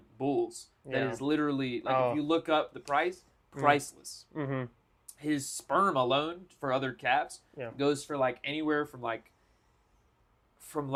bulls. That Yeah. is literally like Oh. if you look up the price, priceless. Mm-hmm. His sperm alone for other calves Yeah. goes for like anywhere from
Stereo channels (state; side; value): identical; both; correlation 1.00